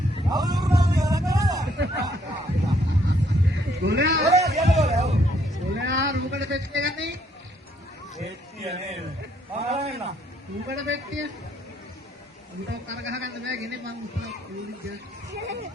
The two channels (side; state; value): both; normal; correlation 0.69